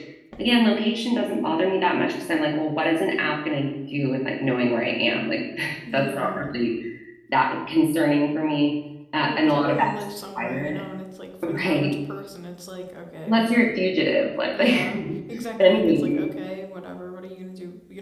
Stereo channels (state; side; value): identical; both; correlation 1.00